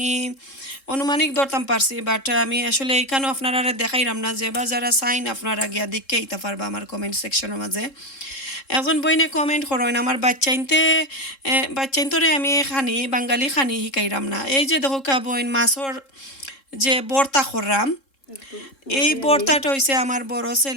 অনুমানিক ধরতাম পারছি বাট আমি আসলে এইখানেও আপনারা দেখাইলাম না যে বা যারা সাইন আপনারা গিয়া দেখকে আইতে পারবা আমার কমেন্ট সেকশনের মাঝে একজন বইনে কমেন্ট করেন আমার বাচ্চাইন্তরে আমি খানি বাঙালি খানি শিকাইরাম না এই যে দেখো কা বইন মাছর যে বর্তা কররাম এই বর্তাটা হইছে আমার বড়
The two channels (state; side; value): late; right; 3.7 ms